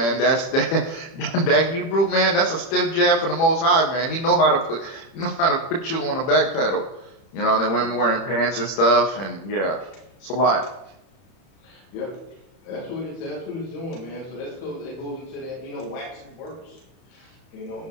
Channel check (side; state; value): right; late; 31 ms